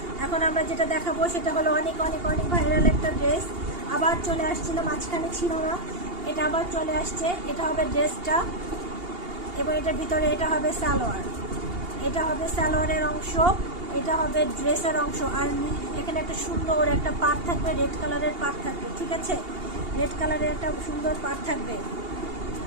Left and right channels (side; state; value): left; late; 2.8 ms